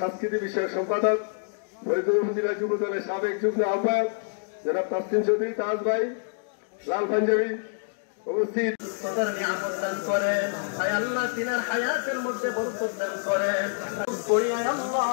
বিষয়ক সম্পাদক, ফরিদগঞ্জ উপজেলা যুব দলের সাবেক যুগ্ম আহ্বায়ক যারা তাসলিম চৌধুরী, তাজ ভাই, লাল পাঞ্জাবি উপস্থিত সুস্থতার নিয়ামত দান করেন। আয় আল্লাহ তিনার হায়াতের মধ্যে বরকত দান করেন। করি আয় আল্লাহ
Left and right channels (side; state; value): right; silent; digital silence